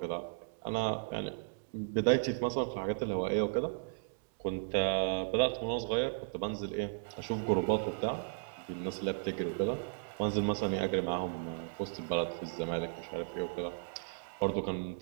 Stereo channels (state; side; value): silent; left; digital silence